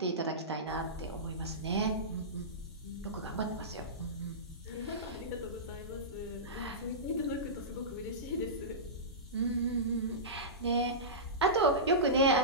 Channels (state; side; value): normal; both; correlation -0.18